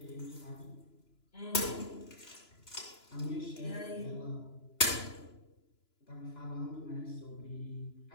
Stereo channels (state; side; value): late; right; 2.9 ms